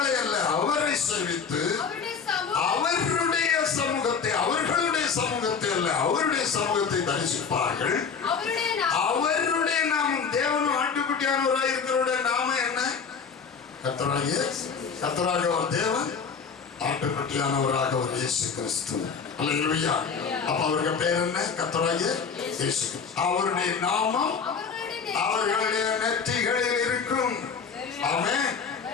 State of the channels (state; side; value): quieter; right; 5.9 dB